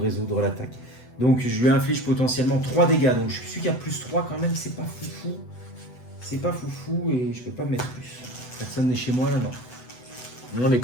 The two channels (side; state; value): right; late; 8.0 ms